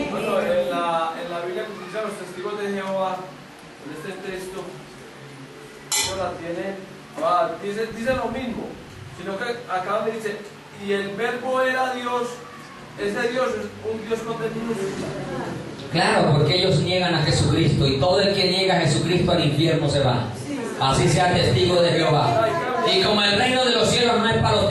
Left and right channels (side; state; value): both; identical; correlation 1.00